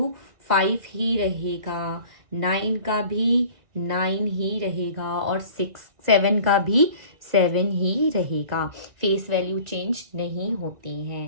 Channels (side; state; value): left; late; 2.0 ms